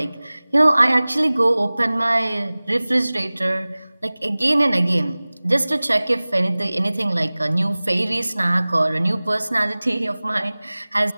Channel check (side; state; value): both; inverted; correlation -0.99